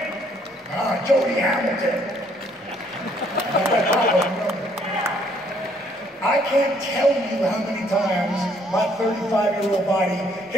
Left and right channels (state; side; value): normal; both; correlation 0.66